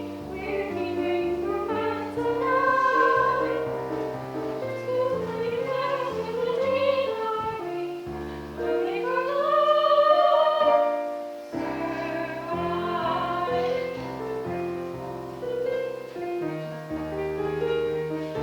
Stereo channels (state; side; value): identical; both; correlation 1.00